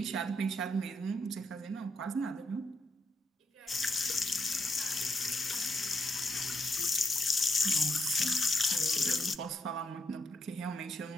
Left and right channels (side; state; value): both; normal; correlation 0.81